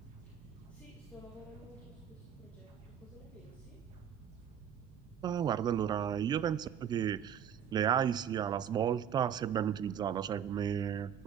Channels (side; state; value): left; quieter; 8.7 dB